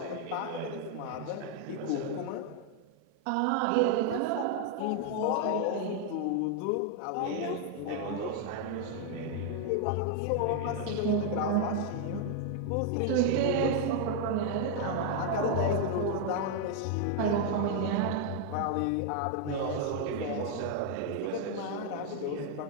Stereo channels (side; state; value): both; different; correlation 0.00